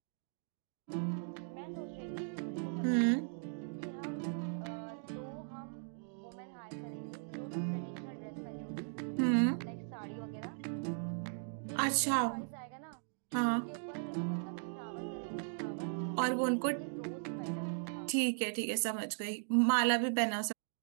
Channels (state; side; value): silent; left; digital silence